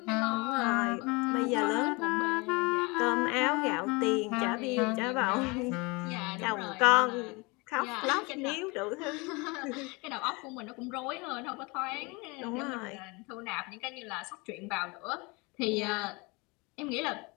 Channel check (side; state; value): right; quieter; 27.2 dB